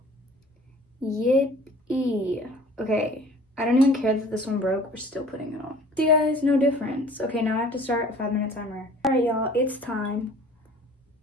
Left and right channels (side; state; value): both; normal; correlation 0.49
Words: Yippee. Okay, I don't even care that this one broke. We're still putting it on. See, guys, no difference. Okay, now I have to start a 5-minute timer. All right, y'all, it's time.